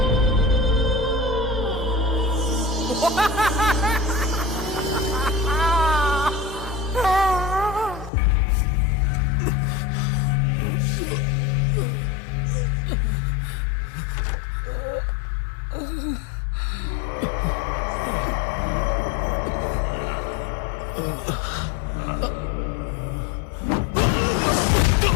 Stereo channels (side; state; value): right; drops out; at 8.1 s